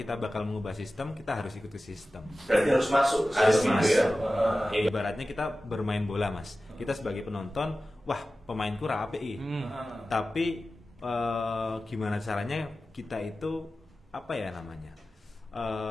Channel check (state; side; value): normal; both; correlation 0.95